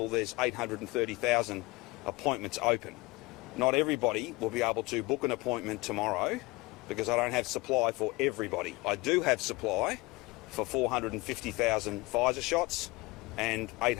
there's 830,000 appointments open. Not everybody will be able to book an appointment tomorrow because I don't have supply for everybody. I do have supply for 450,000 Pfizer shots and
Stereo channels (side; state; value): right; quieter; 23.4 dB